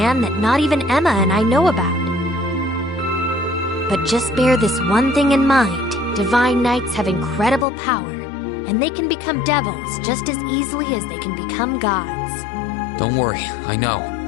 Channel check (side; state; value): right; drops out; at 7.7 s